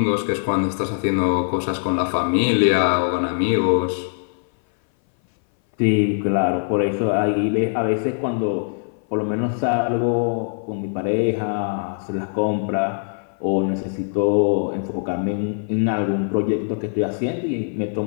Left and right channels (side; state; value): right; silent; 60 dB below the other